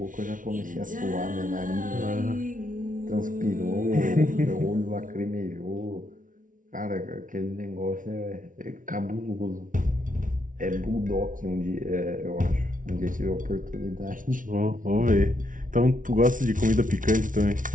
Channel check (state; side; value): late; left; 0.38 ms